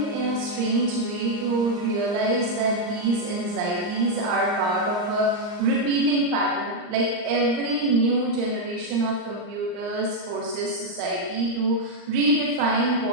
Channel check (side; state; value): left; late; 39 ms